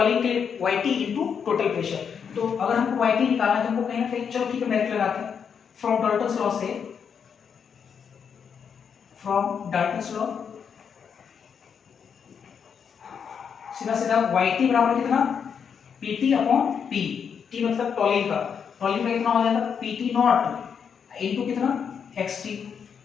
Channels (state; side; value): quieter; right; 7.0 dB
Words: के लिए YT इनटू टोटल प्रेशर। तो अगर हमको YT निकालना है तो हमको कहीं ना कहीं, चलो ठीक है डायरेक्ट लगाते हैं, फ्रॉम डाल्टन्स लॉ से, फ्रॉम डाल्टन्स लॉ सीधा सीधा YT बराबर कितना PT अपॉन P, T मतलब टॉलीन का कितना हो जाएगा PT नॉट इनटू कितना XT,